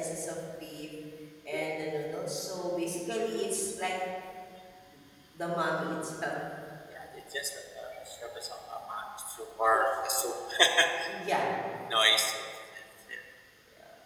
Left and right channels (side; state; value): both; identical; correlation 1.00